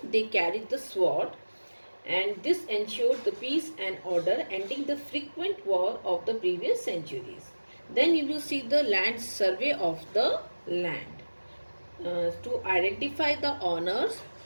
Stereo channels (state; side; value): inverted; both; correlation -1.00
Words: they carried the sword, and this ensured the peace and order, ending the frequent war of the previous centuries. Then you will see the land survey of the land to identify the owners,